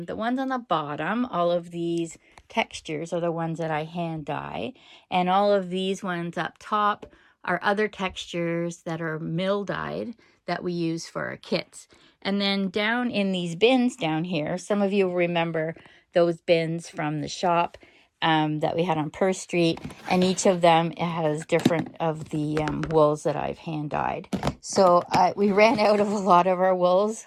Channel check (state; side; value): identical; both; correlation 1.00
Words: ones on the bottom, all of these textures are the ones that I hand dye. And all of these ones up top are other textures that are mill dyed that we use for our kits. And then down in these bins down here, some of you will remember those bins from the shop that we had on Perth Street, and each of them has different of the wools that I've hand dyed. So we ran out of a lot of our wools